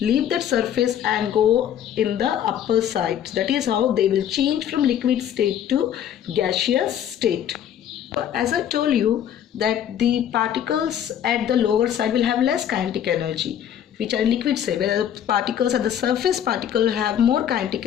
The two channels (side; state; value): right; quieter; 9.9 dB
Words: leave that surface and go in the upper side. That is how they will change from liquid state to gaseous state. As I told you that the particles at the lower side will have less kinetic energy, which are liquid state, where the particles at the surface particle have more kinetic